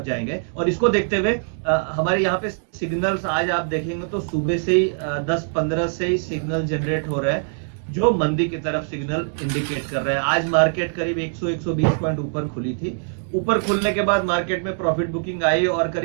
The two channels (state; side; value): silent; left; digital silence